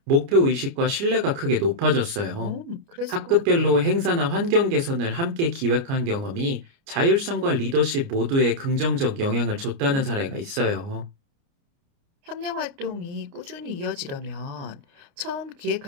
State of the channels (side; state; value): left; late; 29 ms